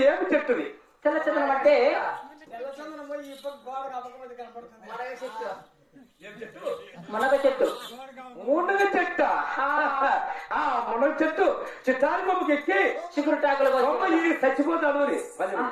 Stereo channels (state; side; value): identical; both; correlation 1.00